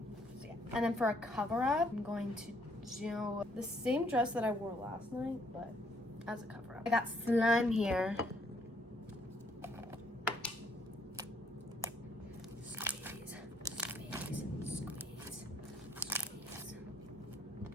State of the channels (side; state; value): both; normal; correlation 0.67